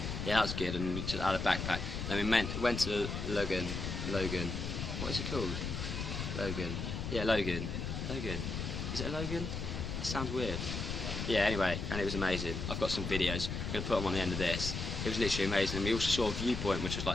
Yeah, that was good, and we just had a backpack. Then we went to Lagoon. What is it called? Lagoon. Yeah, Lagoon. Is it a Lagoon? It sounds weird. Yeah, anyway, and it was amazing. I've got some videos. I'm going to put them on the end of this. It was literally amazing. And we also saw a viewpoint, which was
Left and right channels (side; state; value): left; noise; rumble, 4 dB below the sound